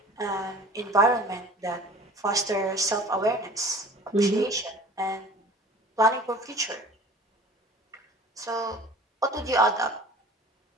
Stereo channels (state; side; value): normal; both; correlation 0.44